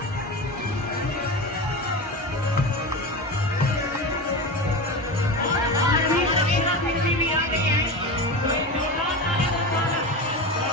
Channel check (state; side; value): normal; both; correlation 0.24